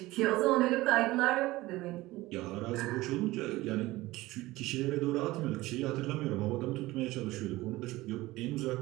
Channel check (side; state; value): left; quieter; 18.8 dB